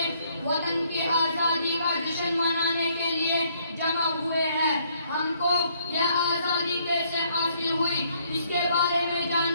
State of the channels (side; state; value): both; inverted; correlation -0.67